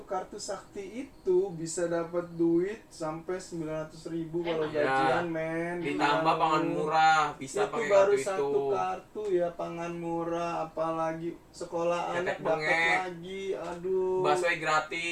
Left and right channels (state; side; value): identical; both; correlation 1.00